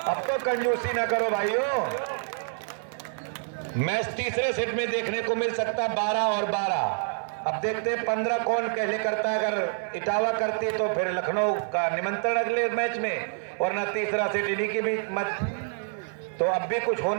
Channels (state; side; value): silent; left; 56 dB below the other